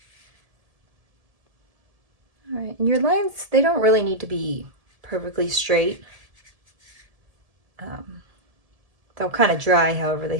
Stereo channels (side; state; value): left; late; 1.7 ms